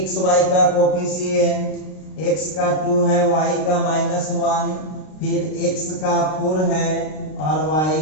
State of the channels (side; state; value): right; late; 32 ms